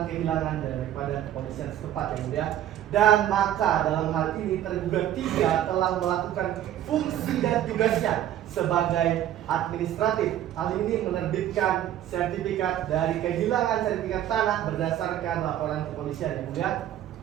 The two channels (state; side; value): quieter; left; 11.8 dB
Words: kehilangan daripada kepolisian setempat, yang mulia. Dan maka dalam hal ini tergugat 3 telah melakukan fungsi dan tugasnya sebagai administratif. Hal ini menerbitkan sertifikat dari kehilangan sertifikat tanah berdasarkan laporan kepolisian, yang mulia.